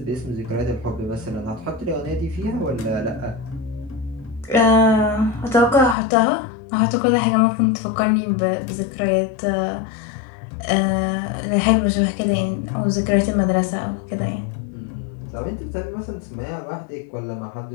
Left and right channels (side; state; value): right; drops out; at 6.0 s